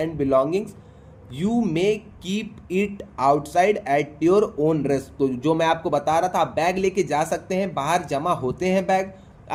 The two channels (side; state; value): both; identical; correlation 1.00